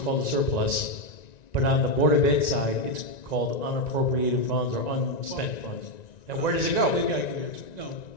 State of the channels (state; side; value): late; right; 1.9 ms